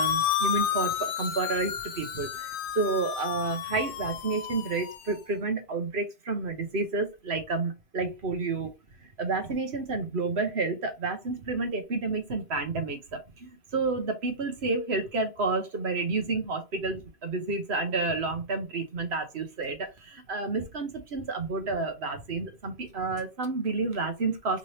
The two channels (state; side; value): late; left; 2.5 ms